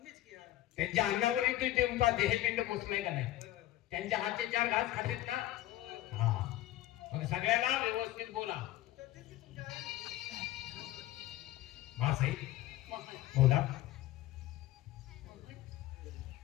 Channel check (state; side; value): quieter; right; 14.9 dB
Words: की यार. त्यांच्या अन्नावरही तुमचा देहपिंड पोचलाय का नाही? त्यांच्या हातचे 4 घास खातेत ना? हा, मग सगळ्याला व्यवस्थित बोला. तर तेच की तुमच्या आई. मा साई मोहन, बोला. मोहन.